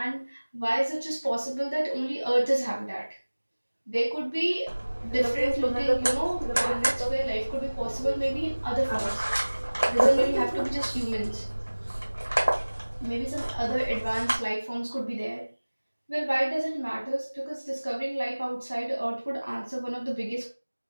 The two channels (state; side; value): inverted; both; correlation -1.00